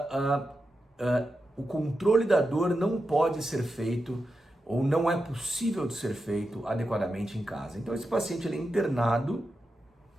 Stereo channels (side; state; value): both; normal; correlation 0.89